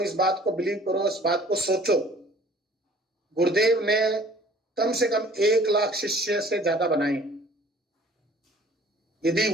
इस बात को बिलीव करो, इस बात को सोचो, गुरुदेव ने कम से कम 1 लाख शिष्य से ज्यादा बनाए। यदि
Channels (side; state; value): both; normal; correlation 0.52